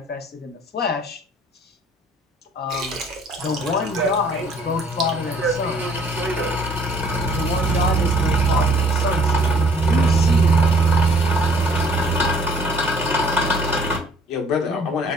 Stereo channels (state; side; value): normal; both; correlation 0.57